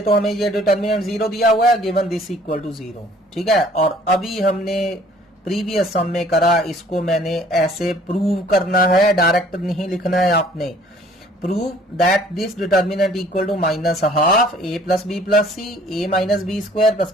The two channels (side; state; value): both; normal; correlation 0.55